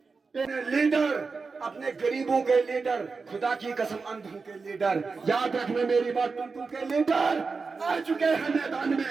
लीडर, अपने गरीबों के लीडर, खुदा की कसम अंधों के लीडर, याद रखना मेरी बात, टुनटू के लीडर आ चुके हैं मैदान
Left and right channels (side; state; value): left; quieter; 4.5 dB